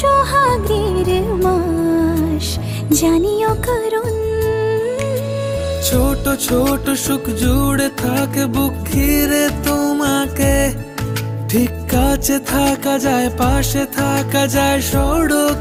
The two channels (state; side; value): identical; both; correlation 1.00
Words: মাস, জানিও কারণ ছোট ছোট সুখ জুড়ে থাকে বুক ঘিরে তোমাকে। ঠিক কাছে থাকা যায়, পাশে থাকা যায়